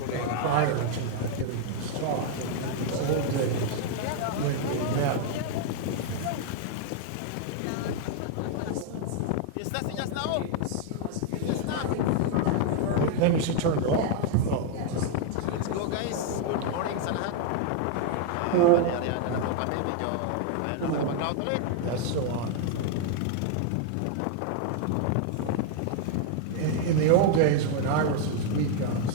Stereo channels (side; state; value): both; different; correlation 0.00